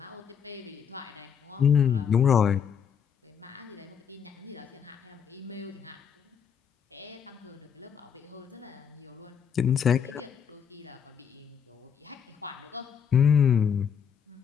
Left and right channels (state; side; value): quieter; right; 7.5 dB